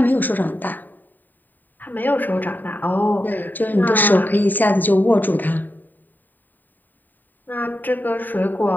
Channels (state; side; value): late; right; 0.089 ms